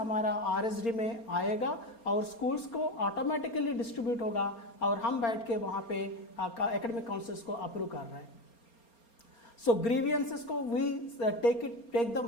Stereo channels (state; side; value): late; right; 4.3 ms